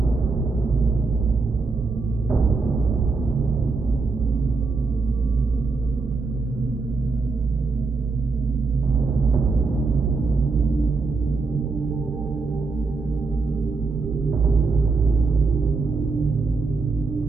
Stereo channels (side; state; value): left; quieter; 4.2 dB